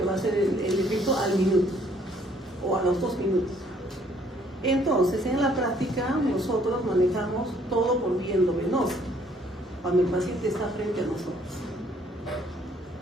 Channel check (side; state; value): both; normal; correlation 0.63